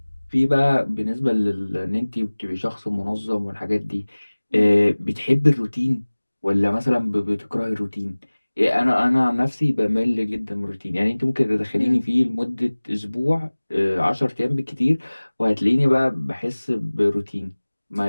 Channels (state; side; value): inverted; both; correlation -1.00